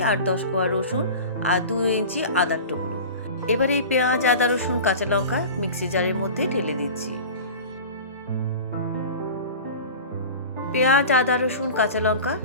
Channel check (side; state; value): both; inverted; correlation -0.35